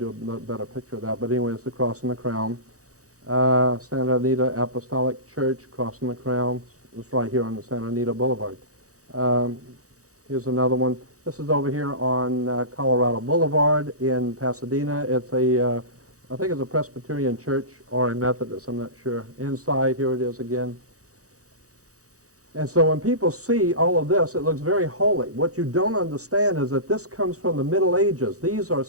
a better picture of that. But anyway, it's the cross and the crown. Santa Anita Apostolic Church, cross and the crown. It's right here on the Santa Anita Boulevard. Here's another one. This is over here on Colorado Boulevard in Pasadena. It's I think it's a Presbyterian church or a Methodist, I'm not sure. Inside, here it is again. And so when people see all of this, it looks very holy. What you don't understand is that this comes from the Middle Ages. These are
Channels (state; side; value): late; left; 0.65 ms